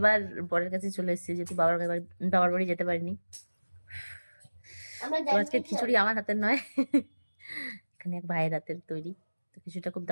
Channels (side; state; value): both; inverted; correlation -1.00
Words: বরের কাছে চলে এসেছি, যেহেতু বাবার বাড়ি যেতে পারিনি। তো আজকে খিচুড়ি আমার হাতের নয়, এখানে এক ভাইয়ের হাতের তৈরি। তো খিচুড়িটা খুব